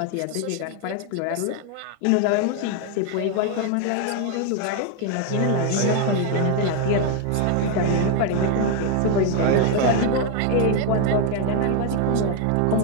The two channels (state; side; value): different; both; correlation 0.01